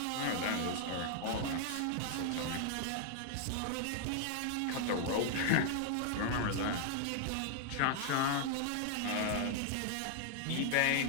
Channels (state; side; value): different; both; correlation 0.00